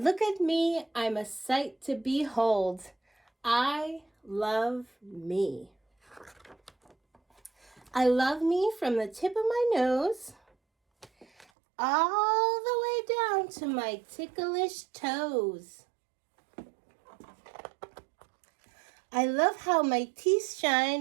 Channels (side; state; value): left; drops out; at 11.5 s